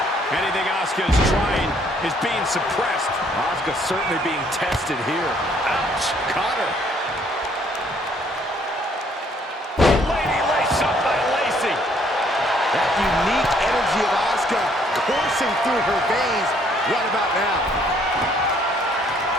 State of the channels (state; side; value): normal; both; correlation 0.65